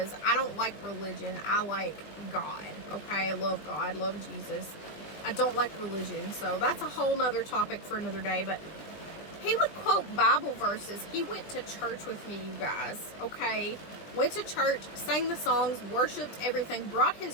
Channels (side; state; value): right; late; 20 ms